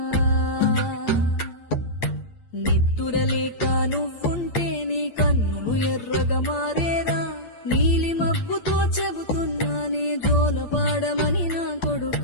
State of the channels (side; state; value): right; late; 8.7 ms